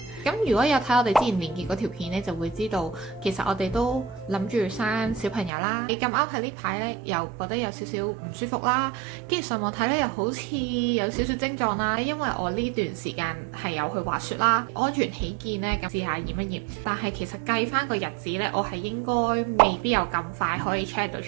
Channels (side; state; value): left; drops out; at 5.5 s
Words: 咁如果有睇我哋之前連結嗰條片呢，就會知道其實我哋都諗住生小朋友啦。你咁啱喺呢排呢，又覺得有少少唔舒服啦，跟住上網睇呢，又好似有少少症狀啦。因為我呢段時間係有去滑雪啦，安全起見呢，咁試下驗一驗。但係其實計翻個日子呢，我係應該未必有咁快可以 check 到